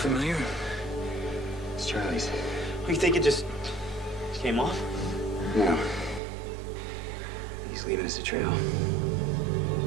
It's Charlie's. You think it just came off? No. He's leaving us a trail.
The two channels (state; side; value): drops out; left; at 6.2 s